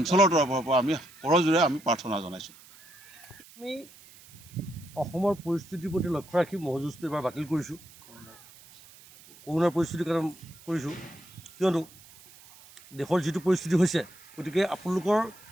তৰফৰ পৰা আমি কৰজোৰে আমি প্ৰাৰ্থনা জনাইছোঁ। আমি অসমৰ পৰিস্থিতিৰ প্ৰতি লক্ষ্য ৰাখি ম'হযুঁজটো এবাৰ বাতিল কৰিছোঁ। কৰোনাৰ পৰিস্থিতিৰ কাৰণে কৰিছোঁ, কিয়নো দেশৰ যিটো পৰিস্থিতি হৈছে, গতিকে আপোনালোকৰ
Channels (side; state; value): right; noise; hiss, 22 dB below the sound